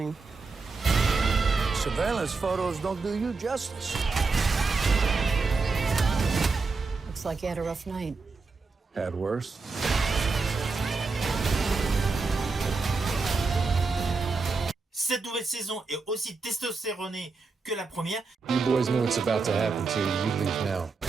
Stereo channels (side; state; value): left; quieter; 4.3 dB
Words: Surveillance photos don't do you justice. Looks like you had a rough night. Had worse. Cette nouvelle saison est aussi testostéronée que la première. You boys know what's about to happen to you. You leave now.